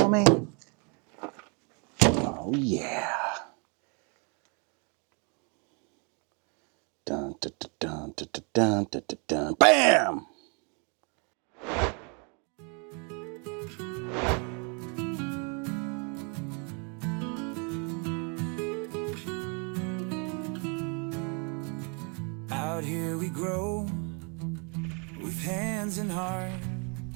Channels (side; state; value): left; quieter; 35.4 dB